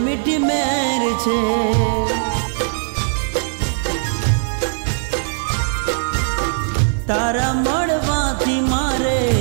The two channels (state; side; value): silent; left; 58 dB below the other